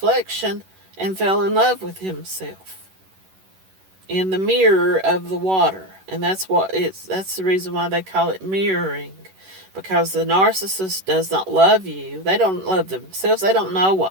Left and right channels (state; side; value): late; left; 11 ms